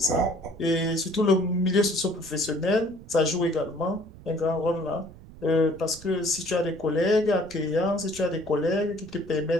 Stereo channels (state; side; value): noise; right; rumble, 19 dB below the sound